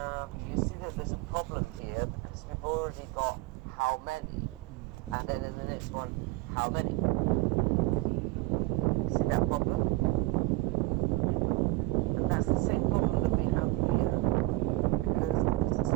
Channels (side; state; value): left; quieter; 20.4 dB